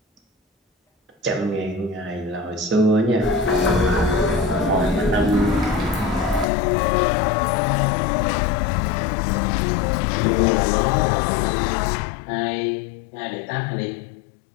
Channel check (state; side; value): drops out; right; at 6.5 s